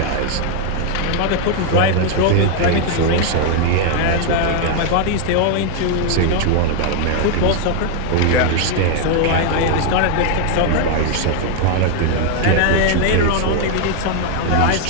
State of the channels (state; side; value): different; both; correlation 0.00